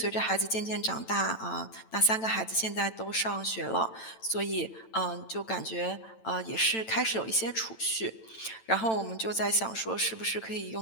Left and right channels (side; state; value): right; late; 9.0 ms